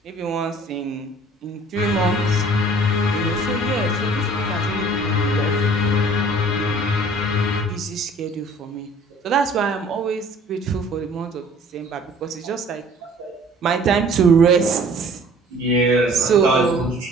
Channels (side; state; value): both; normal; correlation 0.51